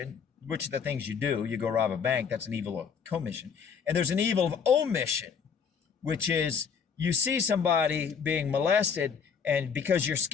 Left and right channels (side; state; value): right; quieter; 6.5 dB